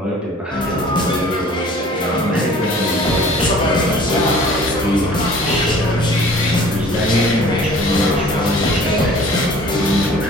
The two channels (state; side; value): normal; both; correlation 0.49